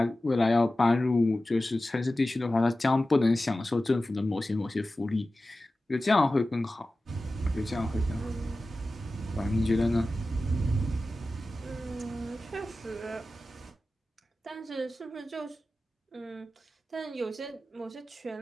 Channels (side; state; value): both; normal; correlation 0.95